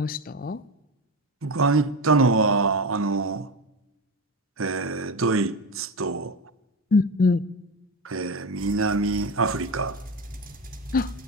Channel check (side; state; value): both; normal; correlation 0.20